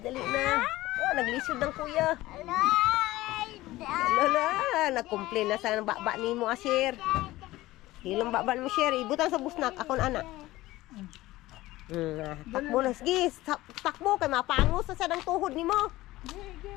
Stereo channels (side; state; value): right; quieter; 17.6 dB